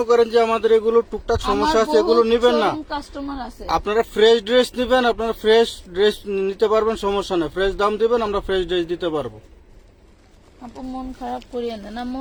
করেন যে আমাদের এগুলো টুকটাক সমস্যা আছে, এগুলো নিবেন না, কাস্টমার আছে। আপনারা ফ্রেশ ড্রেস নিবেন, আপনারা ফ্রেশ ড্রেস নিতে পারবেন, সমস্যা নেই। ফ্রেশ দাম দিবেন, আমরা ফ্রেশ ড্রেস দিতে পারবো। আপু মন খারাপ করিয়েন না। না,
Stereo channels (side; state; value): both; identical; correlation 1.00